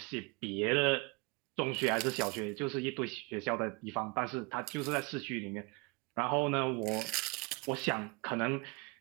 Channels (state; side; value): quieter; left; 29.2 dB